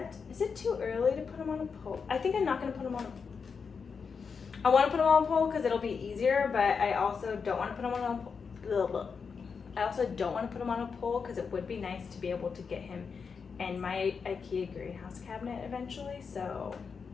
too early to put him on a pole? I think I'm not gonna put him on I wanna put him on a pole because it'll be easier, but I also don't wanna put him on a pole. I also don't wanna put him on a pole because it would be nice to be able to get him in my IKEA greenhouse cabinet eventually, so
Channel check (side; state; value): right; quieter; 5.7 dB